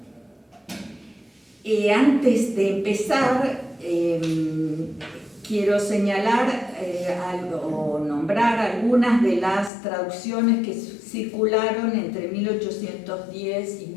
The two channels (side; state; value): right; drops out; at 9.7 s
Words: Antes de empezar, quiero señalar o nombrar algunas de las traducciones que circularon entre 1810 y